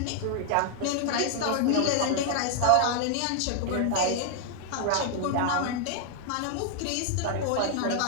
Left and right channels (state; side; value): different; both; correlation 0.00